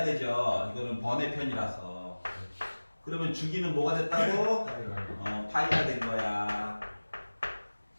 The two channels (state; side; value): inverted; both; correlation -1.00